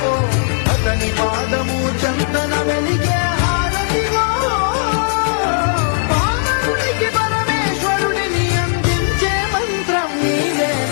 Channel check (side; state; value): right; silent; 68 dB below the other